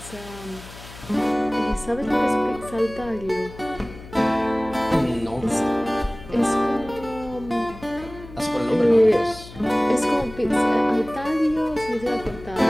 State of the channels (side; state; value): left; noise; hum, 17 dB below the sound